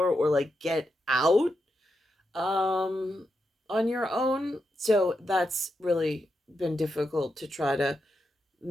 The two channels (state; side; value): normal; both; correlation 0.85